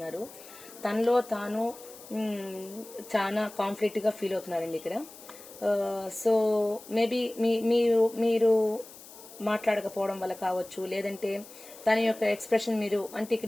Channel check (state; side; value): noise; left; hiss, 18 dB below the sound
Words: తనలో తాను చాలా కాన్ఫ్లిక్ట్ గా ఫీల్ అవుతున్నారండి ఇక్కడ. సో మేబీ మీరు మాట్లాడకపోవడం వల్ల కావచ్చు, లేదంటే తన యొక్క ఎక్స్ప్రెషన్ మీరు అంటే